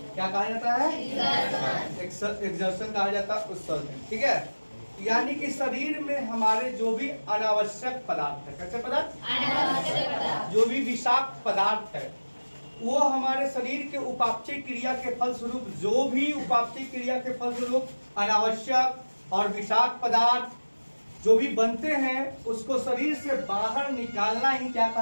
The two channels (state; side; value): inverted; both; correlation -1.00